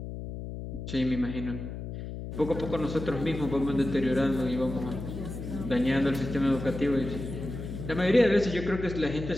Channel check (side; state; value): left; noise; hum, 8 dB below the sound